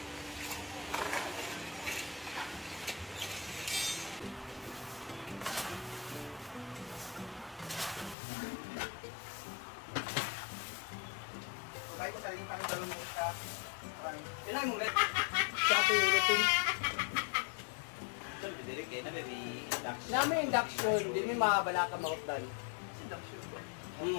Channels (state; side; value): drops out; right; at 8.2 s